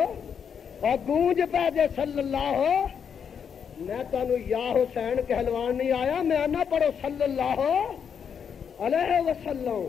اور گونج پہ جے صلی اللہ۔ میں تانوں یا حسین کہلوان نہیں آیا، میں آنا پڑھو صلی اللہ علیہ وسلم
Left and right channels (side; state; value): right; quieter; 7.3 dB